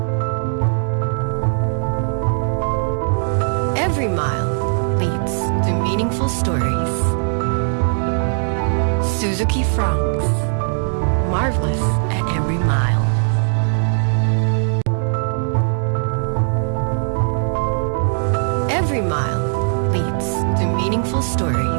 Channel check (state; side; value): silent; left; digital silence